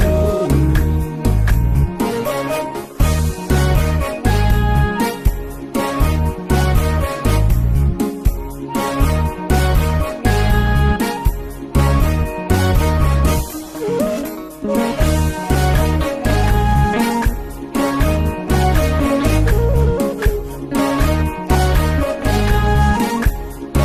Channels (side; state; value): both; identical; correlation 1.00